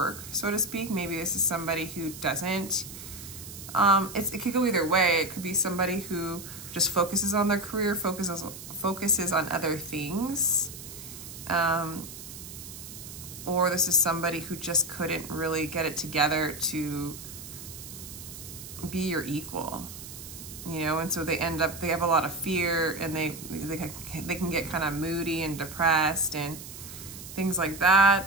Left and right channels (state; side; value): noise; right; hiss, 13 dB below the sound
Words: so to speak. Maybe this is somebody who doesn't. It could go either way. It could be somebody who just focuses on their career, focuses on other things. Or this is somebody who just couldn't really get it together to be your equal, you know, and so they have a lot of fear, and they can get kind of moody and depressed and things like